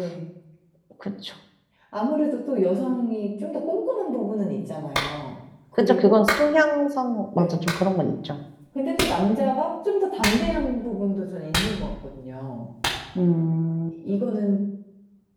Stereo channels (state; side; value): identical; both; correlation 1.00